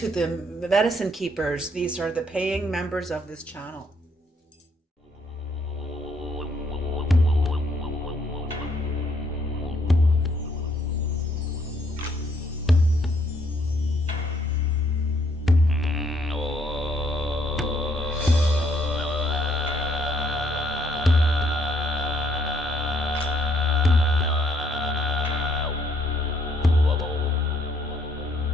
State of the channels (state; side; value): normal; both; correlation 0.69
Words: the medicine keepers. These are the paying members of this channel.